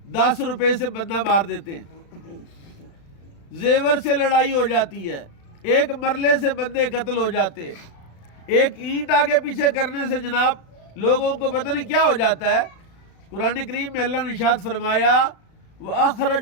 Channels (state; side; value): late; right; 35 ms